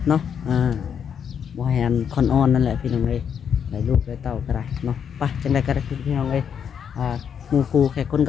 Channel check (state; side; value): quieter; right; 7.8 dB